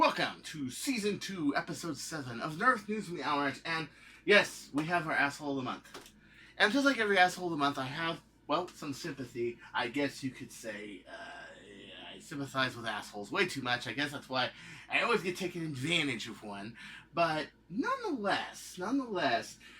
to Season 2, Episode 7 of Nerf News from the Owl Ranch. And yes, we have our Asshole of the Month. And just like every Asshole of the Month, I have, well, some sympathy. I guess you could say, I sympathize with assholes way too much. I guess that's why I always get taken advantage of one. But nonetheless, you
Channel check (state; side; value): identical; both; correlation 1.00